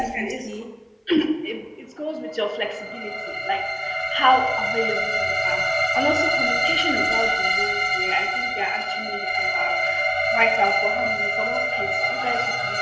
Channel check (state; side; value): identical; both; correlation 1.00